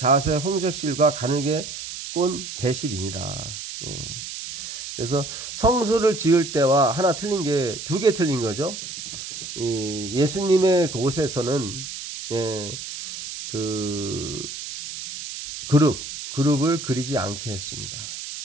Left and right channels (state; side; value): noise; right; hiss, 9 dB below the sound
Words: 홍색 실과 가늘게 꼰 배실이니라. 예. 그래서 성소를 지을 때와 하나 틀린 게 두 개 틀린 거죠. 예수님의 곳에서는 그룹을 그리지 않게 했습니다.